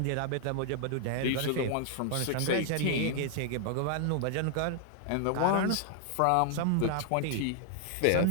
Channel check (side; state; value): both; different; correlation -0.01